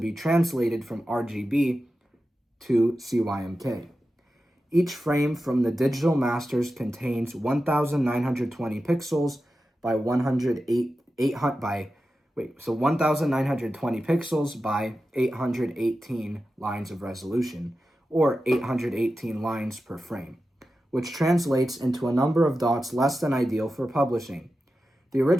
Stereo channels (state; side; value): normal; both; correlation 0.92